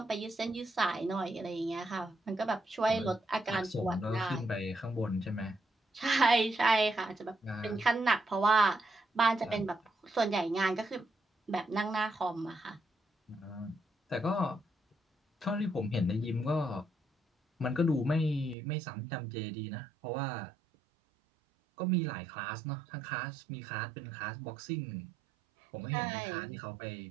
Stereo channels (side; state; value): left; drops out; at 18.6 s